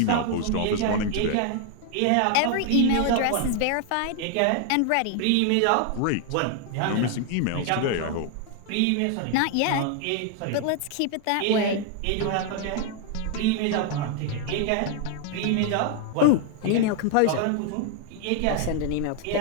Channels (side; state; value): both; different; correlation 0.00